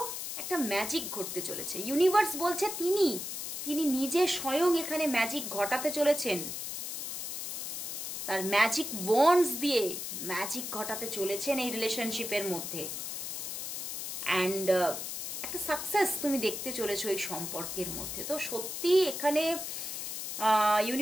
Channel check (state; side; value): noise; left; hiss, 5 dB below the sound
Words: একটা ম্যাজিক ঘটতে চলেছে। ইউনিভার্স বলছে তিনি নিজে স্বয়ং এখানে ম্যাজিক ঘটাতে চলেছেন, তার ম্যাজিক ওয়ান্ডস দিয়ে ম্যাজিক ঘটাতে চলেছেন এই রিলেশনশিপের মধ্যে। অ্যান্ড একটা সাকসেস তুমি দেখতে চলেছো এই সম্পর্কের মধ্যে। তো সত্যি এখানে